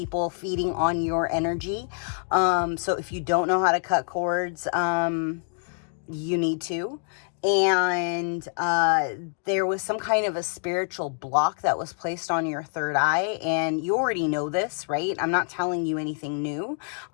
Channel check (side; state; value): right; silent; 61 dB below the other